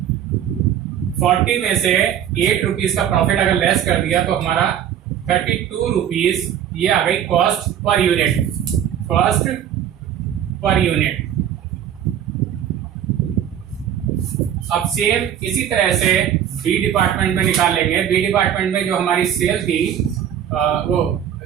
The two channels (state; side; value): quieter; left; 9.8 dB